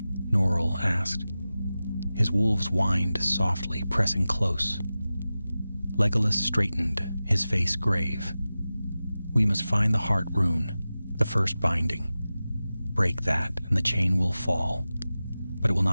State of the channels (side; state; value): both; inverted; correlation -0.95